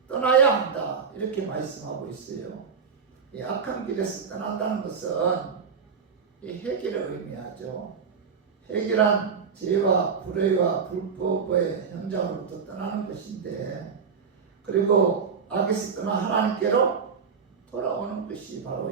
떠나야 한다 이렇게 말씀하고 있어요. 이 악한 길에서 떠난다는 것은 이 회개를 의미하죠. 회개란 죄와 불의와 불법의 현장으로부터 떠나는 것인데 그리고 악에서 떠나 하나님께로 돌아오는 것이 바로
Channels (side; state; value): left; quieter; 5.9 dB